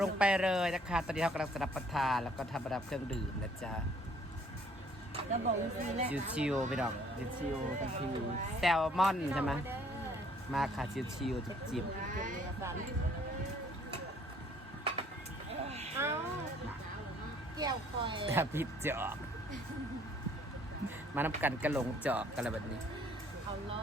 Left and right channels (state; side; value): normal; both; correlation 0.60